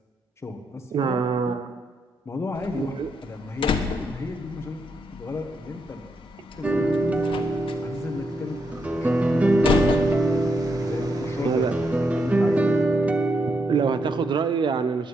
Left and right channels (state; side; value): normal; both; correlation 0.80